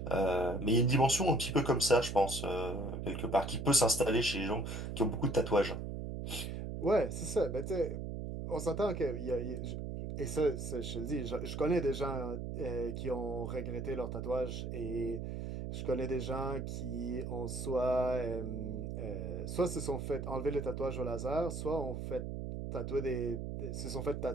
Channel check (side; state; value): right; noise; hum, 5 dB below the sound